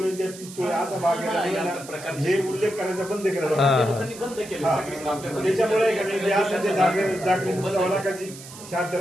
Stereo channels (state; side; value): noise; right; hiss, 16 dB below the sound